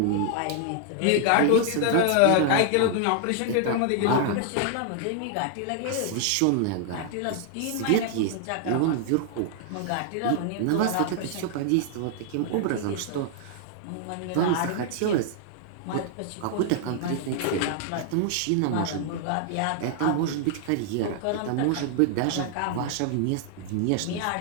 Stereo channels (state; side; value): different; both; correlation 0.00